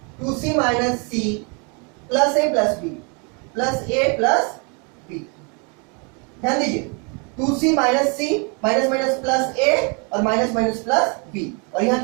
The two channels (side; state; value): left; quieter; 34.5 dB